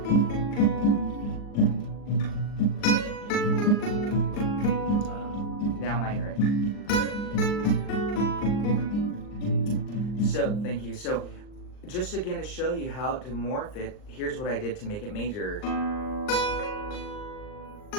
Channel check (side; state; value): right; late; 39 ms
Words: Now minor it. So, thank you. So, just again to show you how to morph it, here's what I did to make it major.